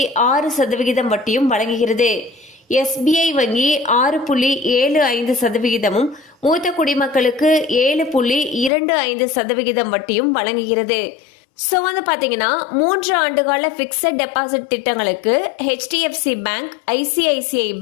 வட்டியும் வழங்குகிறது. SBI வங்கி 6.75%, மூத்த குடிமக்களுக்கு 7.25% வட்டியும் வழங்குகிறது. ஸோ பார்த்தீங்கன்னா 3 ஆண்டுகால பிக்சட் டெபாசிட் திட்டங்களுக்கு HDFC bank, ICICI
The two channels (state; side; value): drops out; right; at 8.7 s